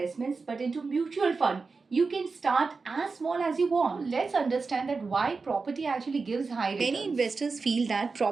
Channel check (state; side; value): quieter; left; 4.4 dB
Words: but into mutual fund, you can start as small as you want. Let's understand that why property actually gives high returns. Many investors feel that